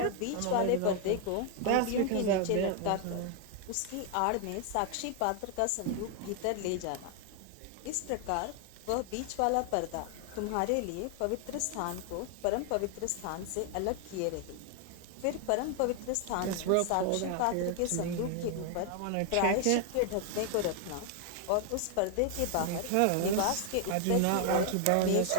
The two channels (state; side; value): different; both; correlation 0.00